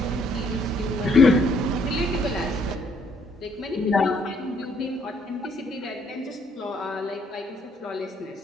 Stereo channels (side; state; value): both; normal; correlation 0.67